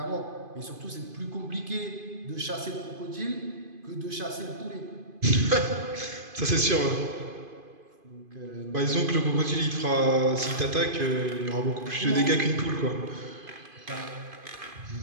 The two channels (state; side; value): late; left; 2.5 ms